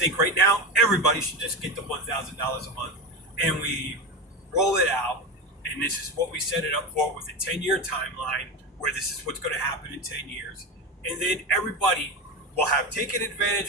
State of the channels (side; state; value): both; normal; correlation 0.20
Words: right now everybody should just get the $1,000 a month, and we roll it out. And this is what we set it up for, with a 10-year timeline, where this is what's going to happen in 10 years. And then everybody will have taken